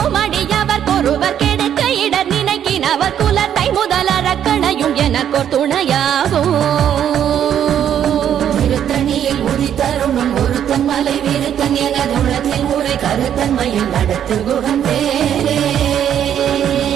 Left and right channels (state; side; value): quieter; left; 9.7 dB